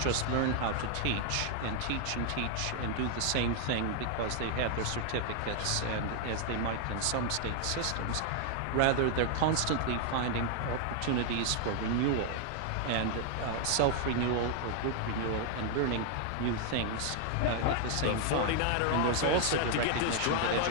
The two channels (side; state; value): both; different; correlation 0.00